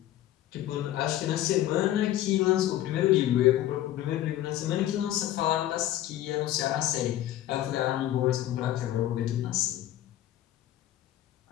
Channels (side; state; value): right; quieter; 13.4 dB